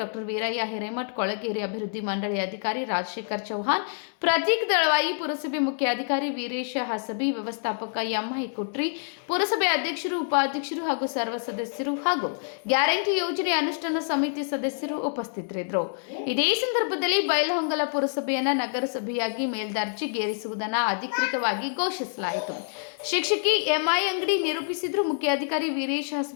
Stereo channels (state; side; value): silent; right; digital silence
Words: doctor Veerayya Hiremath, ಕೊಳಗೇರಿ ಅಭಿವೃದ್ಧಿ ಮಂಡಳಿ ಅಧಿಕಾರಿ ರಾಜಶೇಖರ್ ಚೌಹಾಣ್, ಪ್ರತೀಕ್ ದಳವಾಯಿ, ಪುರಸಭೆ ಮುಖ್ಯಾಧಿಕಾರಿ ವೀರೇಶ ಹಸಬಿ, ವ್ಯವಸ್ಥಾಪಕ ಎಂಐ ಕುಟ್ರಿ, ಪುರಸಭೆ ಅಧ್ಯಕ್ಷರು, ಉಪಾಧ್ಯಕ್ಷರು ಹಾಗೂ ಸರ್ವ ಸದಸ್ಯರು ಹಾಗೂ ಗ್ಯಾರಂಟಿ ಯೋಜನೆ ಅನುಷ್ಠಾನ ಸಮಿತಿ ಸದಸ್ಯರು ಉಪಸ್ಥಿತರಿದ್ದರು. ಇದೇ ಸಂದರ್ಭದಲ್ಲಿ ಬೈಲಹೊಂಗಲ ಪುರಸಭೆಯನ್ನು ನಗರಸಭೆಯಾಗಿ ಮೇಲ್ದರ್ಜೆಗೇರಿಸುವುದನ್ನು ಅಧಿಕೃತವಾಗಿ ಘೋಷಿಸಲಾಯಿತು. ಶಿಕ್ಷಕಿ ಎಂಐ ಅಂಗಡಿ ನಿರೂಪಿಸಿದ್ರು. ಮುಖ್ಯಾಧಿಕಾರಿ ವೀರೇಶ್